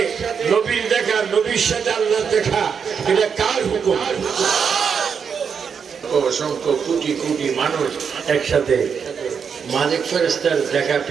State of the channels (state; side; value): quieter; left; 6.6 dB